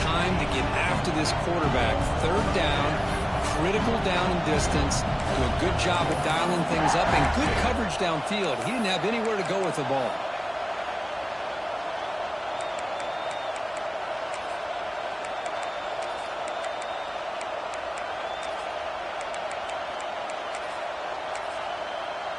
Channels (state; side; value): identical; both; correlation 1.00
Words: to get after this quarterback. 3rd down, critical down and distance. Do a good job of dialing things up and good coverage downfield. He didn't have anywhere to go with the ball.